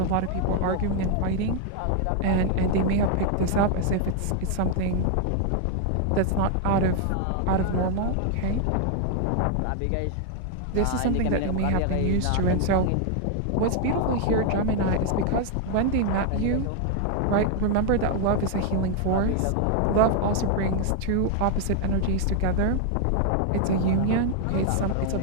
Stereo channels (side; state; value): both; different; correlation 0.00